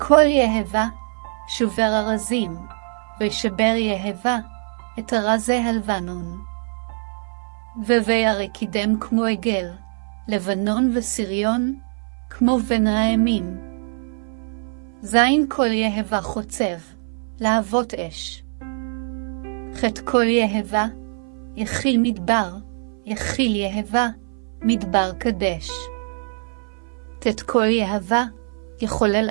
יהבה, שובר ארזים, ושבר יהבה, את ארזי הלבנון. וירא קידם כמו עגל, לבנון וסריון, כמו בן ראמים. זין כל יהבה חוצב, להבות אש. ח' כל יהבה, יחיל מדבר, יחיל יהבה, מדבר קדש. ט' כל יהבה, יחולל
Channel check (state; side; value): silent; left; 60 dB below the other